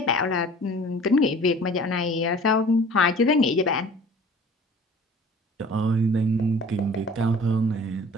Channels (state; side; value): normal; both; correlation 0.47